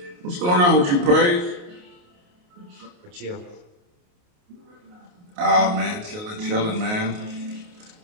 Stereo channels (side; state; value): left; late; 28 ms